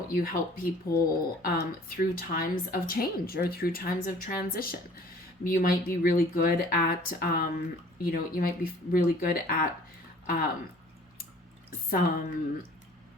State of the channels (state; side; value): normal; both; correlation 0.52